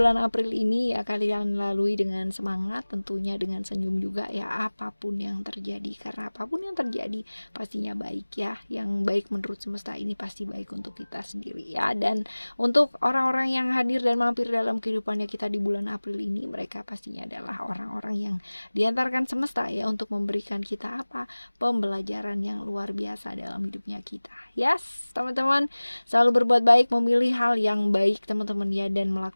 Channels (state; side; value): inverted; both; correlation -1.00